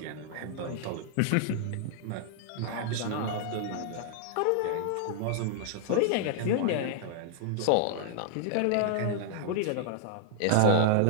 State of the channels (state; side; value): different; both; correlation -0.01